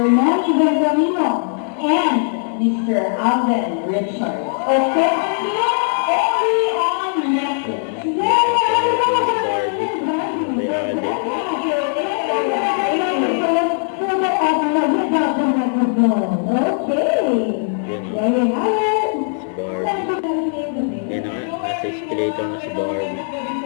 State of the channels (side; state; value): right; silent; 65 dB below the other